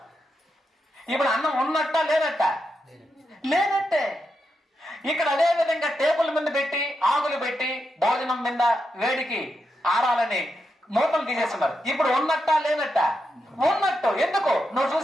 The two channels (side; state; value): both; normal; correlation 0.85